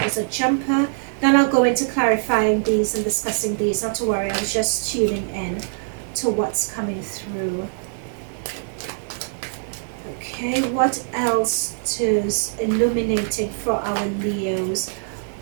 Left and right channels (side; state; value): left; silent; digital silence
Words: is a jumper, then I'll go into clarifying these and discussing these. Not to worry, I was just tuning in to what's coming through. Okay, what else is illuminating for our Leos?